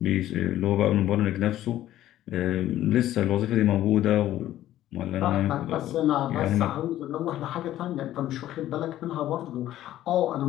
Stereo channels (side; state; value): right; quieter; 13.4 dB